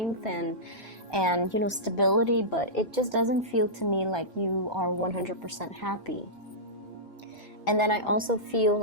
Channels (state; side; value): normal; both; correlation -0.15